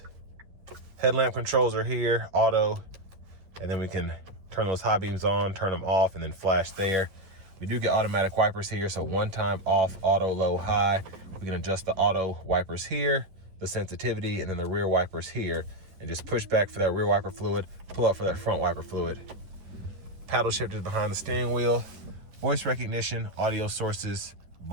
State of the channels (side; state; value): left; late; 11 ms